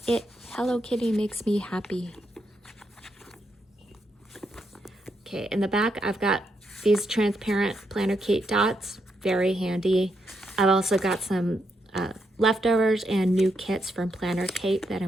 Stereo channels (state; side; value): normal; both; correlation 0.80